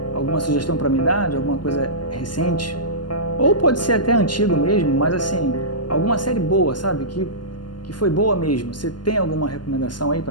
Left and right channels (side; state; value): right; late; 0.71 ms